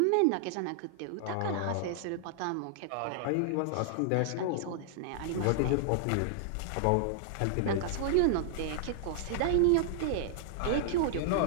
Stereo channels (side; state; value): both; different; correlation -0.01